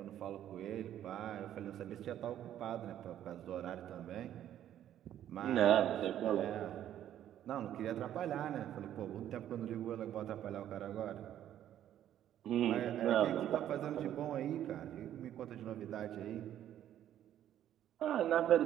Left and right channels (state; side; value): quieter; left; 11.3 dB